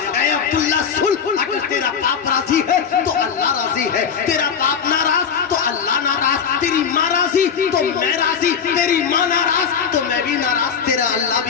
اے عبداللہ سن، اگر تیرا باپ راضی ہے تو اللہ راضی ہے، تیرا باپ ناراض تو اللہ ناراض، تیری ماں راضی تو میں راضی، تیری ماں ناراض تو میں بھی ناراض، تیرا اللہ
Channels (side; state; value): right; quieter; 7.0 dB